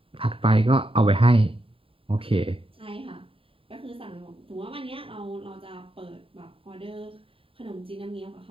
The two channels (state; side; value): late; left; 0.27 ms